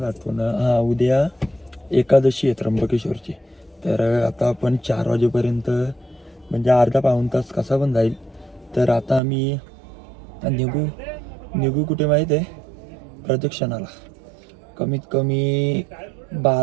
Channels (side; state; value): left; drops out; at 9.2 s